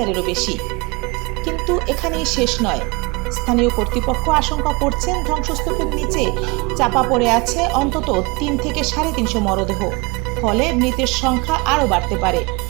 বেশি। কিন্তু এখানেই শেষ নয়। স্থানীয় কর্তৃপক্ষ আশঙ্কা করছেন ধ্বংসস্তূপের নিচে চাপা পড়ে আছে অন্তত 3 থেকে 350 মরদেহ, ফলে মৃতের সংখ্যা আরও বাড়তে পারে।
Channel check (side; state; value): left; quieter; 26.2 dB